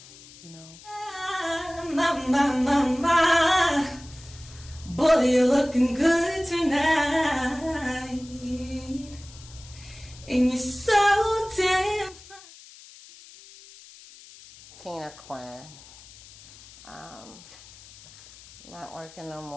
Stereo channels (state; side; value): noise; left; hiss, 20 dB below the sound